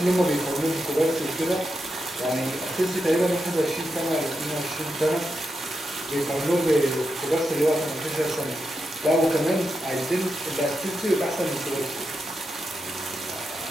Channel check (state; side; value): normal; both; correlation 0.86